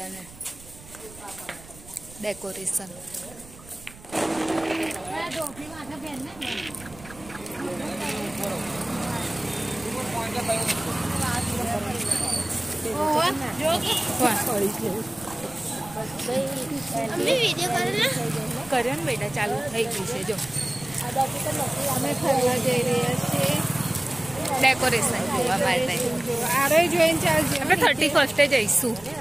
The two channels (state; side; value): noise; right; rumble, 20 dB below the sound